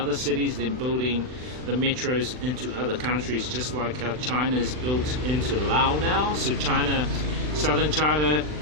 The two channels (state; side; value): late; left; 39 ms